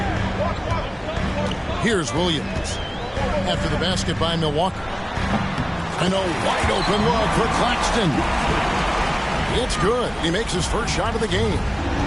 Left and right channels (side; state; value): both; identical; correlation 1.00